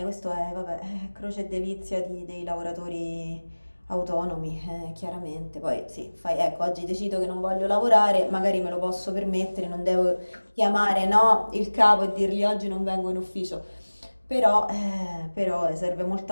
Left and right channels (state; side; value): inverted; both; correlation -1.00